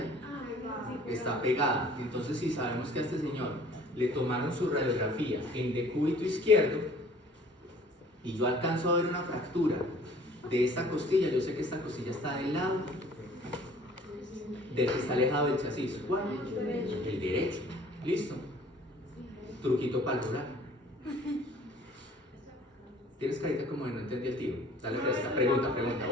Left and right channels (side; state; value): both; normal; correlation 0.52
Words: está pegada. Entonces, si sabemos que a este señor le tomaron su radiografía en decúbito izquierdo y yo alcanzo a ver una fractura de esta costilla, yo sé que esta costilla está del lado del que está alejado del chasis. ¿Cuál? El derecho. ¿Listo? Truquito para el rural. Tienes carita como de no entendí el tiro. Dale fresca. Pregunta.